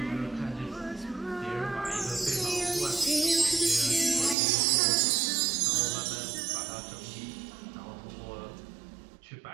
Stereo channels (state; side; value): drops out; left; at 4.4 s